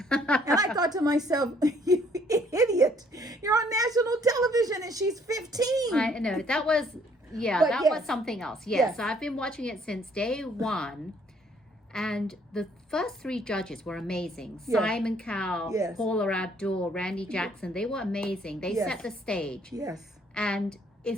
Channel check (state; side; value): normal; both; correlation 0.63